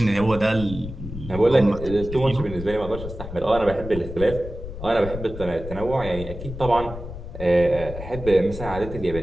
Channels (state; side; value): noise; left; rumble, 10 dB below the sound